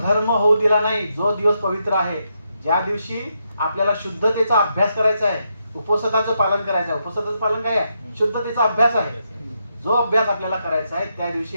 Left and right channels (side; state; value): both; inverted; correlation -0.81